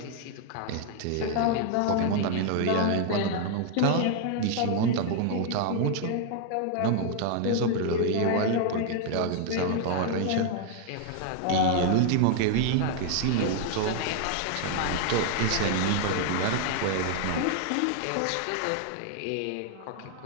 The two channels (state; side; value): different; both; correlation 0.00